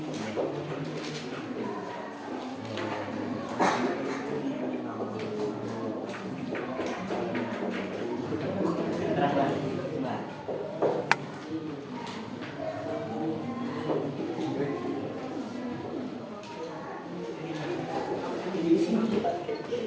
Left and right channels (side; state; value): both; identical; correlation 1.00